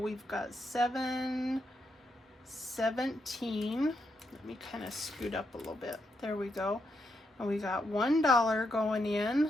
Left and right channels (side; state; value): both; normal; correlation 0.82